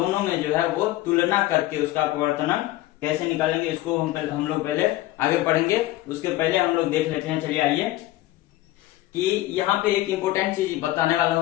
में जो है वो तुलना करके उसका अपवर्तनांक कैसे निकालेंगे, इसको हम लोग पहले आगे पढ़ेंगे। उसके पहले हम लोग देख लेते हैं, चलिए आइए, कि यहाँ पे एक इम्पोर्टेंट चीज बताने वाला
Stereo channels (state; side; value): quieter; right; 16.4 dB